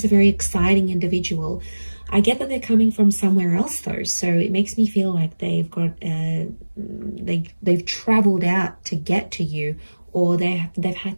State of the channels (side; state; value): both; inverted; correlation -1.00